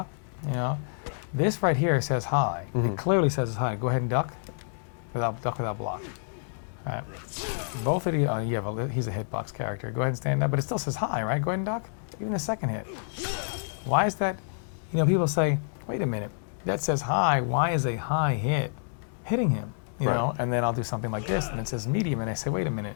This right here says high. It clearly says it's high. Go ahead and duck without block. All right. Both of you, he's a hitbox character. Go ahead and stand up, but it still says high, right? Go ahead and duck. Even the second hit. Why is that? People say, wait a minute, that says high. Why is a high hit hitting him? Right. And then I'll do something like this, and it says medium, and I say, wait a minute.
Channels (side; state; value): right; silent; digital silence